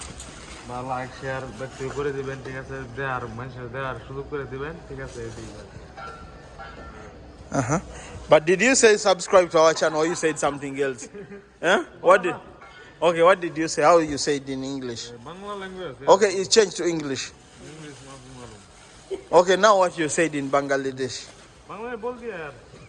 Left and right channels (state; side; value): identical; both; correlation 1.00